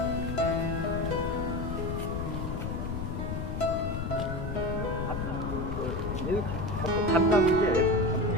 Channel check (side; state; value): left; noise; rumble, 3 dB below the sound